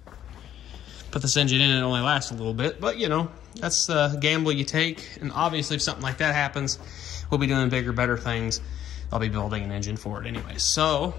put this engine in and it only lasts a little bit, but you know, that's the gamble you take. And obviously if something like that happens, we'll be doing bigger, better things. I'll be building an engine for it anyway. So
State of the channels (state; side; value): quieter; right; 10.9 dB